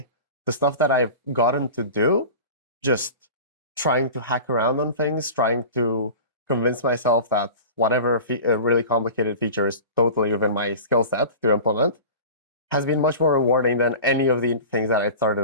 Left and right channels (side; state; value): both; inverted; correlation -0.35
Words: The stuff that I've gotten to do, just trying to hack around on things, trying to convince myself that whatever really complicated feature is totally within my skill set to implement, has been much more rewarding than any of the things that I